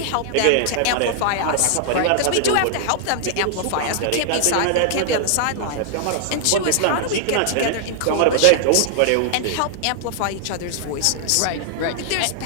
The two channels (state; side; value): different; both; correlation 0.00